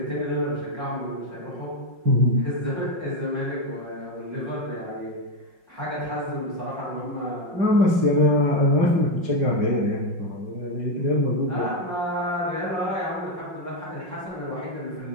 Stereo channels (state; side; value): late; left; 5.5 ms